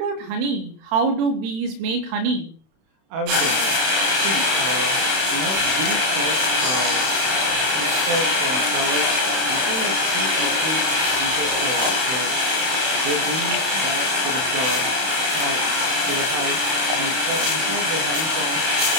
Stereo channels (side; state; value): left; late; 31 ms